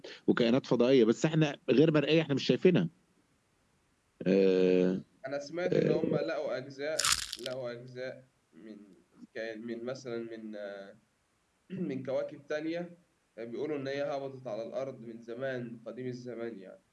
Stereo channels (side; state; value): both; identical; correlation 1.00